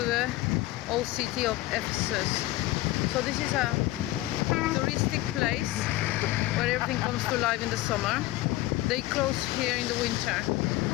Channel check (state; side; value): quieter; right; 17.4 dB